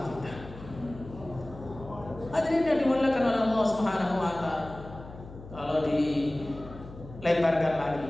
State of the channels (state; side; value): noise; left; hum, 16 dB below the sound